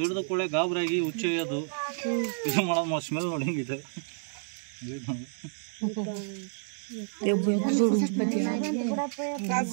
ಕೂಡಲೇ ಗಾಬರಾಗಿ ಹುಚ್ಚೊಯ್ಯೋದು ಇದು ಮಾಡೋದು ಸ್ಮೆಲ್ ನೋಡಿ ಹೆಂಗಿದೆ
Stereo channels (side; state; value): left; silent; digital silence